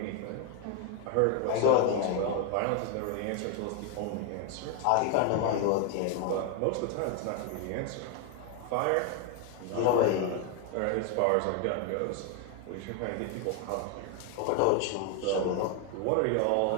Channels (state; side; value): different; both; correlation 0.01